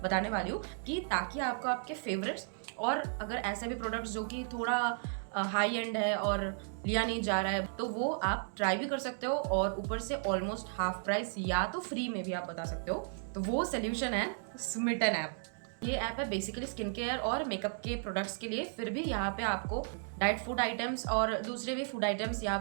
वाली हूँ कि ताकि आपको आपके फेवरेट्स और अगर ऐसे भी प्रोडक्ट्स जो कि थोड़ा हाई एंड है और लिया नहीं जा रहा है तो वो आप ट्राई भी कर सकते हो और ऊपर से ऑलमोस्ट हाफ प्राइस या तो फ्री में भी आप बता सकते हो। तो वो सोल्यूशन है स्मिटन ऐप। ये ऐप है बेसिकली स्किन केयर और मेकअप के प्रोडक्ट्स के लिए। फिर भी यहाँ पे आपको डाइट फूड आइटम्स और दूसरे भी फूड आइटम्स यहाँ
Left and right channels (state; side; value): silent; left; digital silence